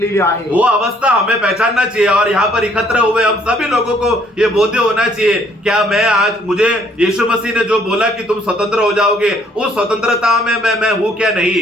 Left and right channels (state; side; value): normal; both; correlation 0.64